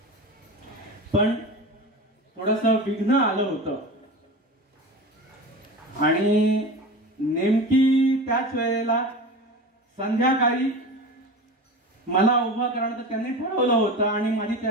पण थोडस विघ्न आलं होतं आणि नेमकी त्याच वेळेला संध्याकाळी मला उभा करण्याचं त्यांनी ठरवलं होतं आणि माझी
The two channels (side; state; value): both; normal; correlation 0.30